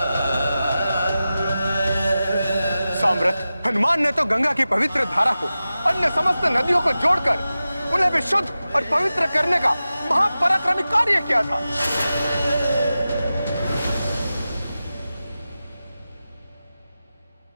साम्राट, हनुमान ने तो गंगा की पवित्र धारा को अन्य समस्त नदियों को जोड़कर उन्हें भी शुद्ध और पवित्र करने का महापराक्रमी कार्य किया था।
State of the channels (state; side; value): inverted; both; correlation -0.94